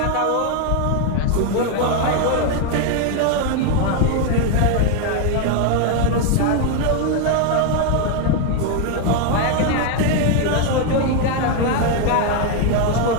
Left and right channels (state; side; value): different; both; correlation 0.01